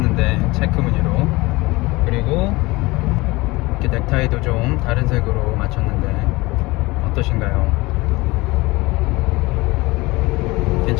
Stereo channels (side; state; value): right; quieter; 22.0 dB